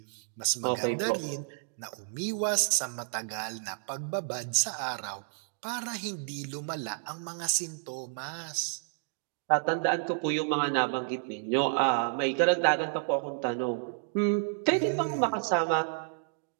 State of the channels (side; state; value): left; silent; digital silence